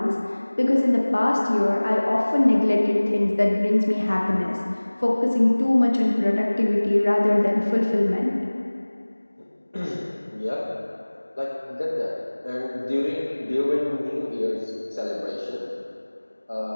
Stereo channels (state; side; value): inverted; both; correlation -1.00